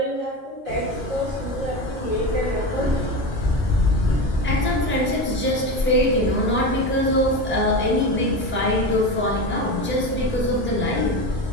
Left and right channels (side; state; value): both; normal; correlation 0.22